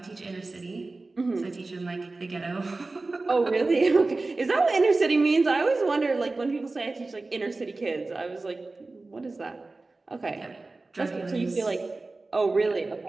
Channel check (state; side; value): quieter; left; 3.4 dB